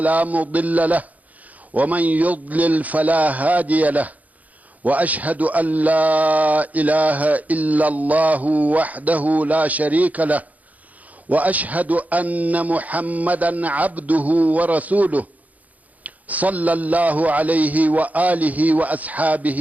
مضل له ومن يضلل فلا هادي له، وأشهد أن لا إله إلا الله وحده لا شريك له، وأشهد أن محمدا عبده ورسوله صلى الله عليه وآله وأصحابه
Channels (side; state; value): left; late; 0.076 ms